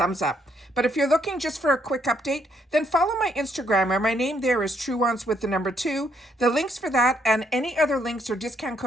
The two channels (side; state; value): both; normal; correlation 0.72